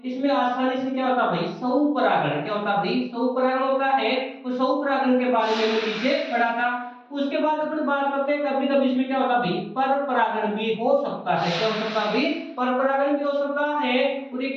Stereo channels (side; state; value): both; identical; correlation 1.00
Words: इसमें आसानी से क्या होता है भाई? स्वपरागण। क्या होता है भाई? स्वपरागण होता है। तो स्वपरागण के बारे में पीछे पढ़ा था। उसके बाद अपन बात करते हैं कभी कभी इसमें क्या होता है भाई? पर परागण भी हो सकता है। क्या हो सकता है भाई? पर परागण भी हो सकता है। और ये